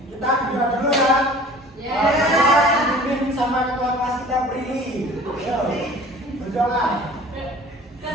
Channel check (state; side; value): normal; both; correlation 0.46